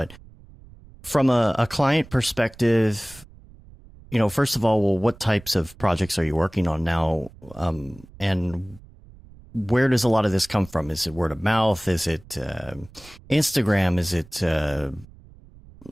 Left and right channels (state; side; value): noise; right; rumble, 22 dB below the sound